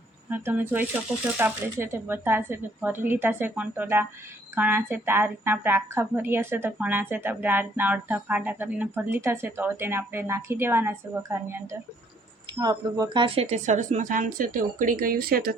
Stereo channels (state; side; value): normal; both; correlation 0.64